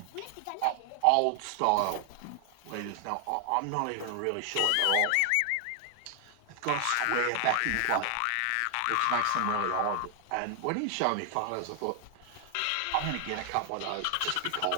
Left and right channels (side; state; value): both; different; correlation 0.00